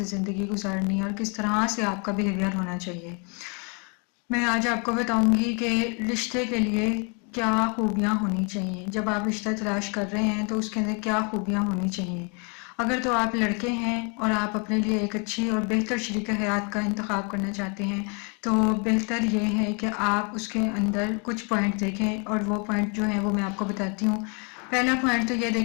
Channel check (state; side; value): quieter; right; 35.4 dB